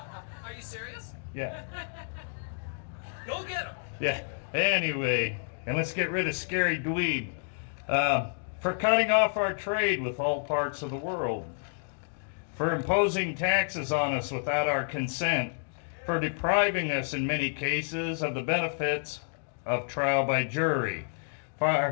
you serious? Yeah. Go get him. Yeah. Anyway, and let's get rid of Scary Dweeb for cutting off our trade with all parts of the world, for imposing taxes on us without our consent, for depriving us in many cases of the benefits of trial by jury,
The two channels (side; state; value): right; silent; digital silence